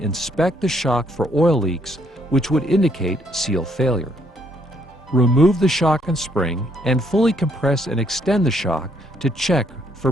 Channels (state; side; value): normal; both; correlation 0.70